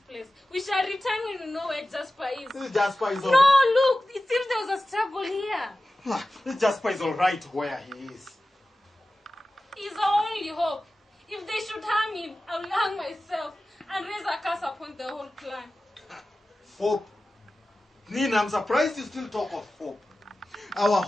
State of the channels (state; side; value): normal; both; correlation 0.95